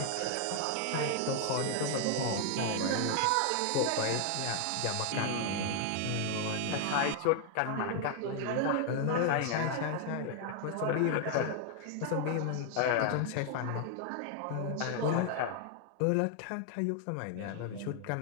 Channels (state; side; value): different; both; correlation 0.00